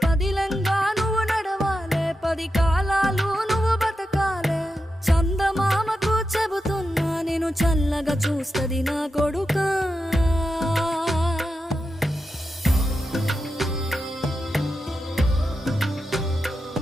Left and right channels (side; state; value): both; normal; correlation 0.88